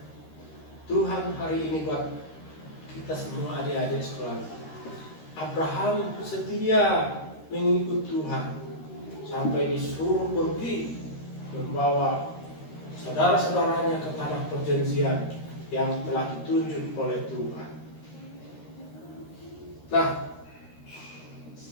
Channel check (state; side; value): late; right; 13 ms